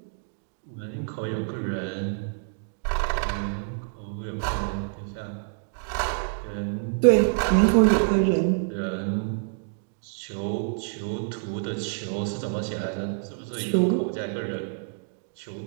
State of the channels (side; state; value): left; silent; digital silence